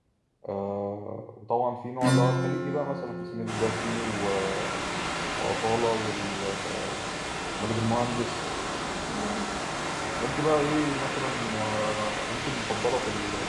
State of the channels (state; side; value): identical; both; correlation 1.00